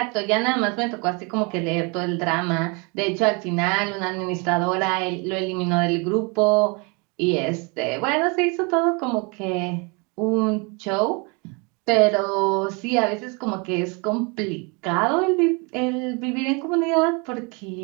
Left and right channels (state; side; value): quieter; left; 31.0 dB